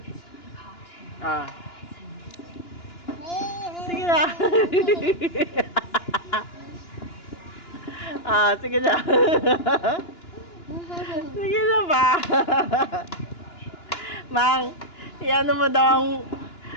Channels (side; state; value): right; late; 2.9 ms